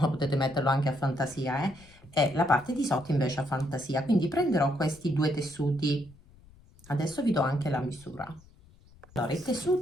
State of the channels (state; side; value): noise; left; rumble, 25 dB below the sound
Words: potete metterlo anche a fantasia, e la parte di sotto invece a fantasia. Quindi prenderò questi due tessuti. Adesso vi do anche la misura. Allora, il